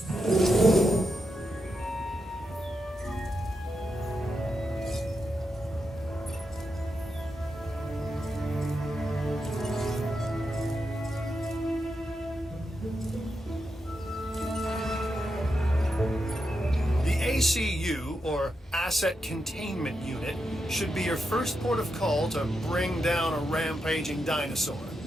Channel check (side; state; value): both; normal; correlation 0.86